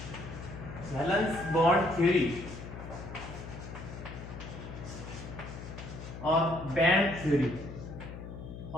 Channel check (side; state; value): left; noise; hum, 10 dB below the sound